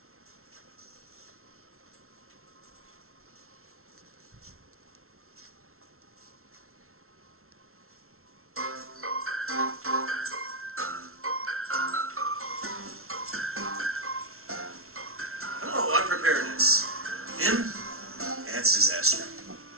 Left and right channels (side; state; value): left; late; 0.62 ms